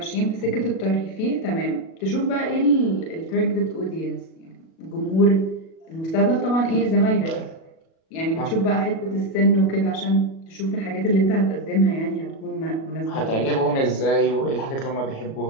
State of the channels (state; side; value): late; right; 37 ms